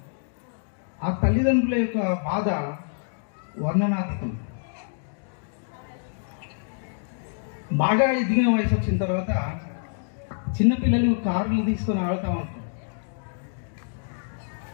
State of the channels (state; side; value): silent; right; digital silence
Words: ఆ తల్లిదండ్రుల యొక్క బాధ వర్ణనాతీతం. బాగా ఎదిగిన వయసు వచ్చిన తర్వాత చిన్నపిల్లలు కార్లు తీసుకొని ఆడుతూ ఉంటారు.